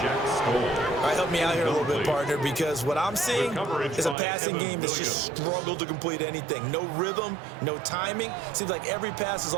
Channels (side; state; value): left; drops out; at 4.2 s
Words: All right, help me out here a little bit, partner, because what I'm seeing is a passing game that's just struggled to complete anything. No rhythm, no timing. Seems like every pass is